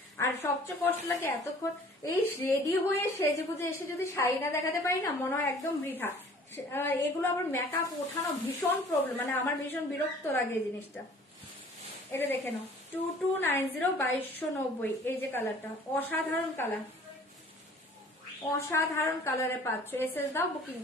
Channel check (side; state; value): both; normal; correlation 0.51